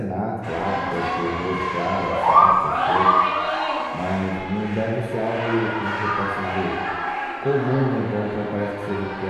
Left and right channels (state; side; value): identical; both; correlation 1.00